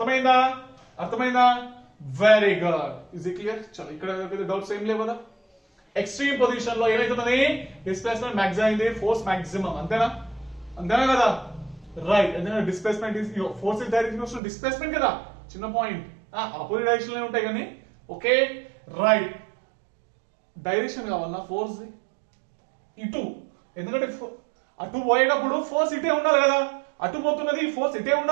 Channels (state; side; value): drops out; left; at 14.4 s